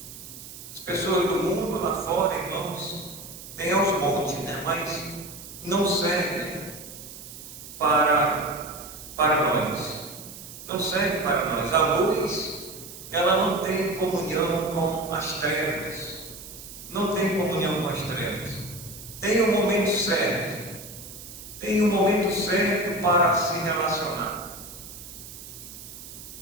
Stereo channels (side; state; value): right; noise; hiss, 14 dB below the sound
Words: As pessoas do mundo lá fora, irmãos, tem aos montes, né? Mas não servem para nós. Não serve para nós. A luz, ela não tem comunhão com as trevas. Não tem comunhão com as trevas. Tem um momento certo. Tem um momento certo para se relacionar.